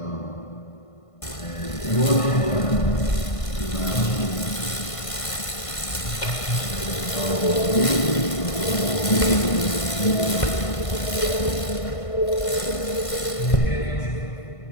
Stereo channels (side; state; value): right; late; 1.5 ms